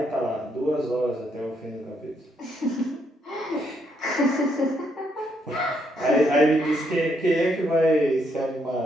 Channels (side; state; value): both; normal; correlation 0.75